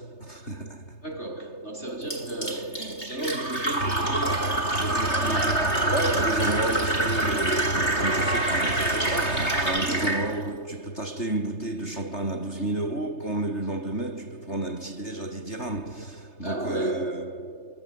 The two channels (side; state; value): right; late; 3.3 ms